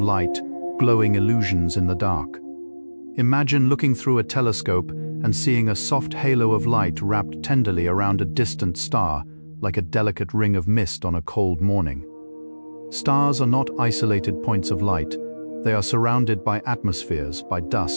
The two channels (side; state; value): both; inverted; correlation -1.00